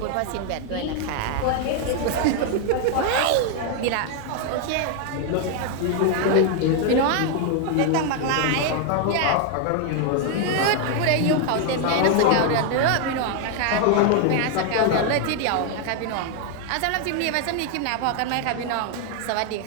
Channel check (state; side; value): different; both; correlation 0.00